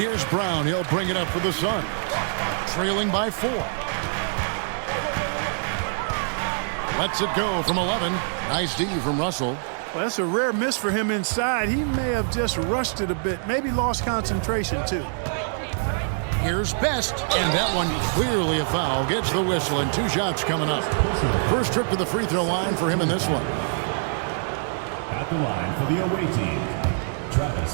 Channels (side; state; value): left; silent; digital silence